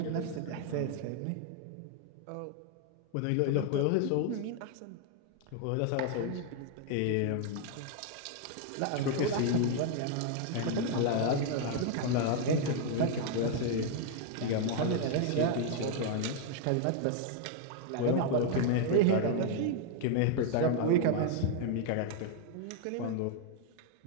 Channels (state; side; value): different; both; correlation 0.00